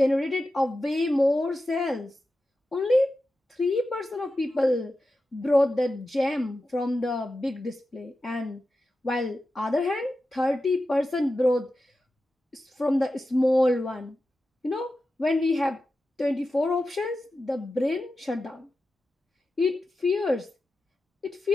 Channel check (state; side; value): normal; both; correlation 0.92